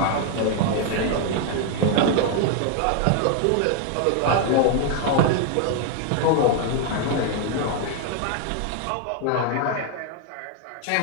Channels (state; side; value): different; both; correlation 0.00